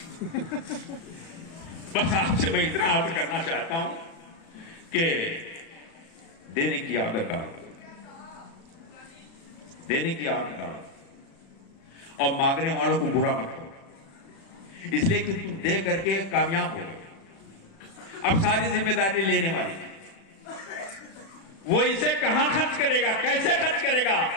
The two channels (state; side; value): late; right; 36 ms